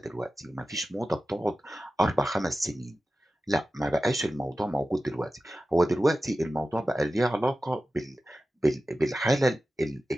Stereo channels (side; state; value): both; normal; correlation 0.94